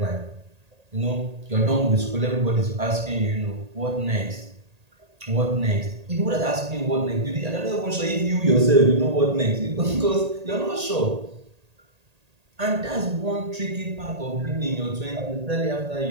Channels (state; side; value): late; left; 1.8 ms